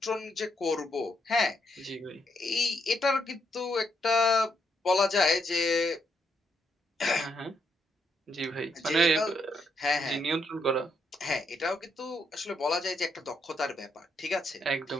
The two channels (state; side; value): normal; both; correlation 0.77